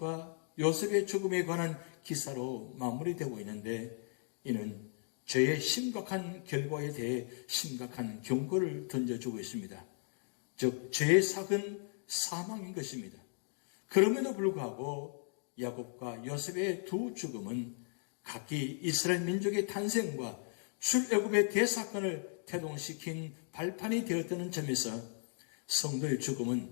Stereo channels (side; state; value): right; silent; 54 dB below the other